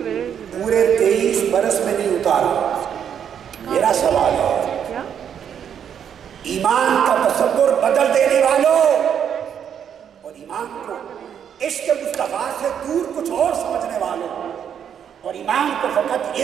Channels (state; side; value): quieter; left; 8.5 dB